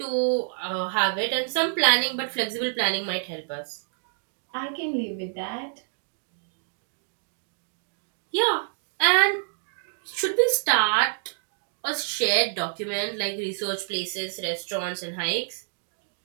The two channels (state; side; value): silent; left; digital silence